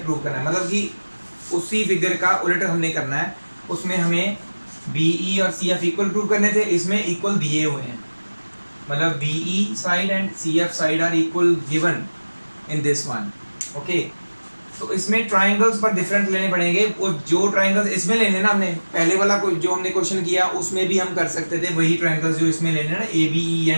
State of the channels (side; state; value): both; inverted; correlation -1.00